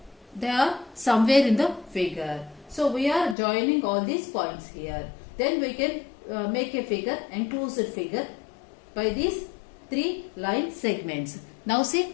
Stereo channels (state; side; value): drops out; right; at 3.4 s